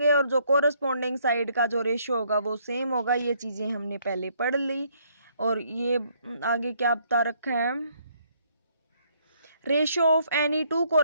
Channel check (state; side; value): inverted; both; correlation -0.68